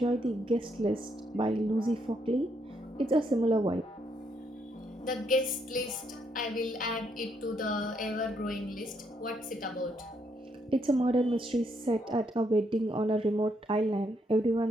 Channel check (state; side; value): normal; both; correlation 0.75